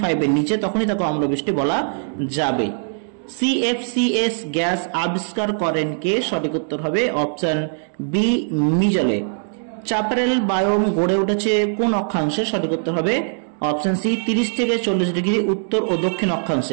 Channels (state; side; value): silent; left; 65 dB below the other